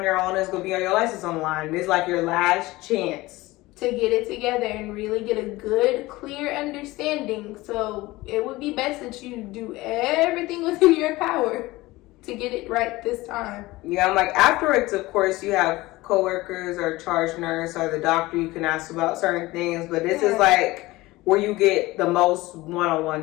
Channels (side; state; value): right; quieter; 19.6 dB